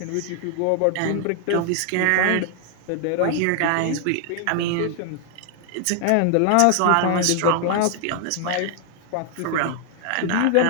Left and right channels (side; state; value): both; different; correlation 0.00